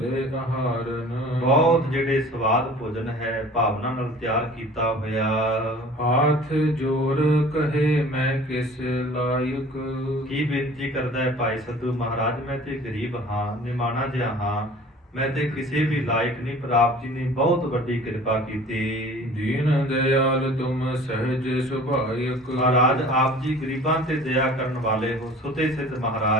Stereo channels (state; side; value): normal; both; correlation 0.46